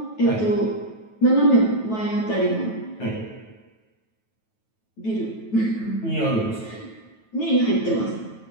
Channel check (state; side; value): late; right; 9.2 ms